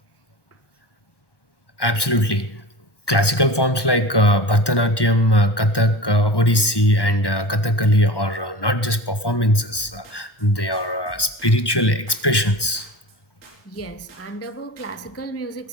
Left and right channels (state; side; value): late; right; 1.1 ms